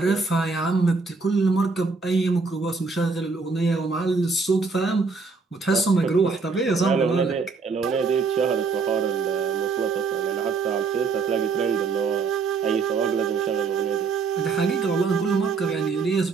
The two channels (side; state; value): left; quieter; 4.5 dB